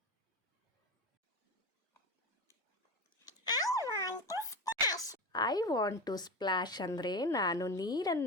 I want to splash ಅಂದರೆ ನಾನು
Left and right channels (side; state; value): both; normal; correlation 0.23